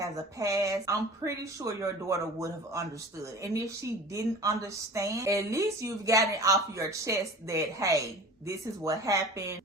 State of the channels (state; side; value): normal; both; correlation 0.40